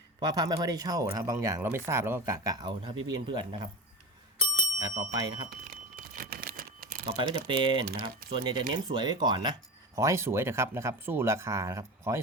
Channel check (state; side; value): normal; both; correlation 0.26